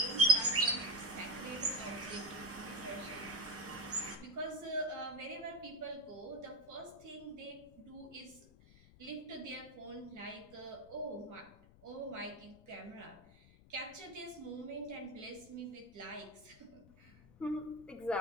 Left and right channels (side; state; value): left; noise; rumble, 23 dB below the sound